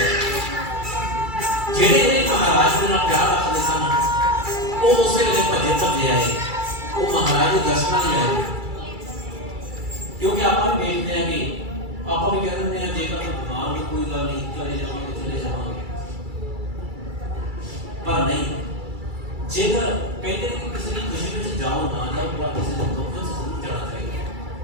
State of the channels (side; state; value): left; late; 2.3 ms